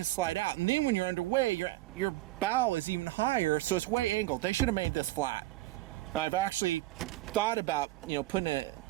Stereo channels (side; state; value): left; quieter; 17.9 dB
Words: slide out, and then when you're underway, your bow is even higher, so it's way angled. They should have made this flat. I've actually thought about, putting